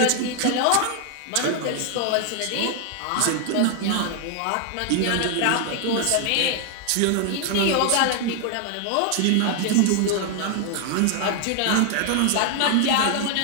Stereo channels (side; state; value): both; different; correlation 0.00